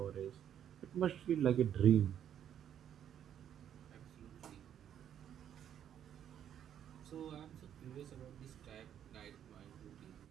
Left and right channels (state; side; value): quieter; left; 9.7 dB